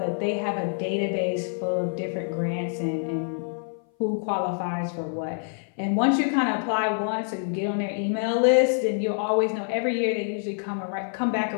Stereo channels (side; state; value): right; silent; 58 dB below the other